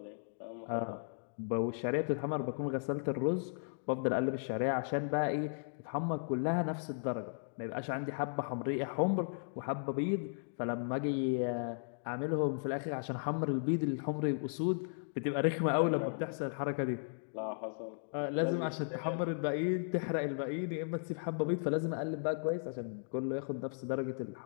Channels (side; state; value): right; silent; digital silence